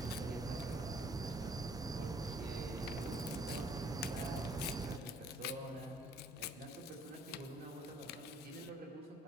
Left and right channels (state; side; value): normal; both; correlation 0.61